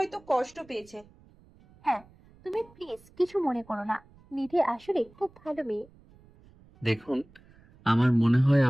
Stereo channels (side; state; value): right; noise; rumble, 27 dB below the sound